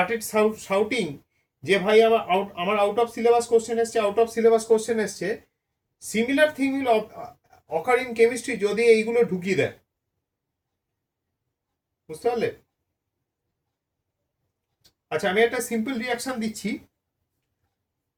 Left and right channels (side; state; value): both; identical; correlation 1.00